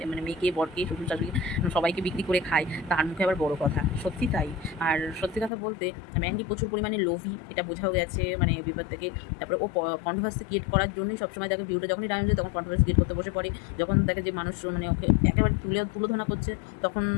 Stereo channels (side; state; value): right; drops out; at 5.5 s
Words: মানে মেয়েকে, বরকে, শ্বশুর শাশুড়ি সবাইকে বিক্রি করে খায়, তার মুখে আবার বড় কথা, সত্যি তাই। আর সত্যি কথা বলতে ম্যান্ডি প্রচুর পরিমাণে লোভী, এটা বোঝাও গেছে মানে বিপদ থেকে। তারপরে ও কন্ট্রোভার্সি ক্রিয়েট করার জন্যই সবসময় দেখে ভিউটা যখনই ডাউন যায় তখন কন্ট্রোভার্সি ক্রিয়েট করতে বসে পড়ে। যখন দেখে যে মানুষ মানে ওকে একেবারে তুলোধনা করছে, তখন